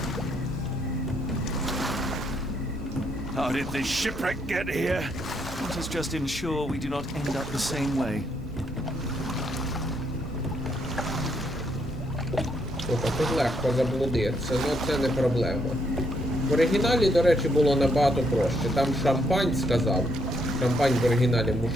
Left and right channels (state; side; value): normal; both; correlation 0.74